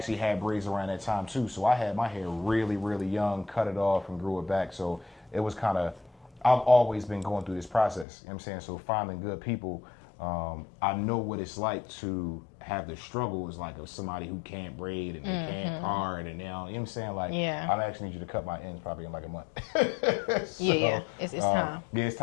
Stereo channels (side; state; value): right; drops out; at 8.1 s